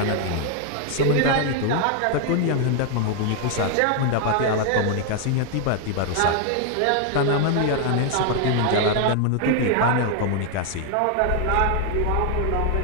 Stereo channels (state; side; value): different; both; correlation 0.00